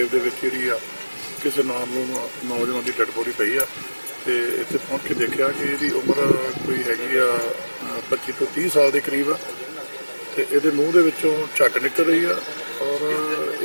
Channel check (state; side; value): inverted; both; correlation -1.00